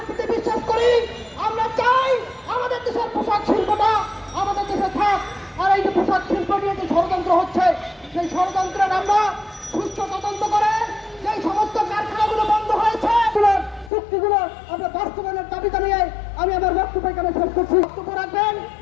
বিশ্বাস করি, আমরা চাই আমাদের দেশের পোশাক শিল্পটা আমাদের দেশে থাক। আর এই যে পোশাক শিল্প নিয়ে যে ষড়যন্ত্র হচ্ছে, সেই ষড়যন্ত্রের আমরা সুস্থ তদন্ত করে সেই সমস্ত কারখানাগুলো বন্ধ হয়েছে চুক্তিগুলো আমরা বাস্তবায়নের দাবি জানিয়ে আমি আমার বক্তব্য এখানে শেষ করছি। বক্তব্য রাখবেন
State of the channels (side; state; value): right; drops out; at 13.9 s